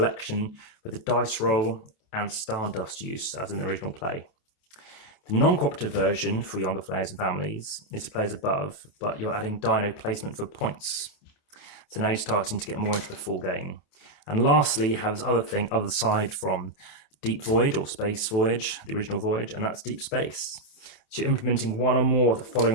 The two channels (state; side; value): late; right; 27 ms